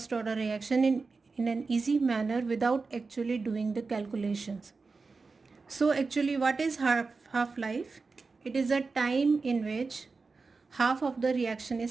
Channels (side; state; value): left; quieter; 4.2 dB